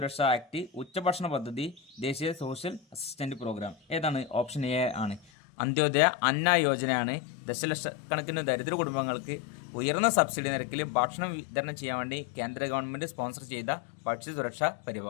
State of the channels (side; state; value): right; drops out; at 5.2 s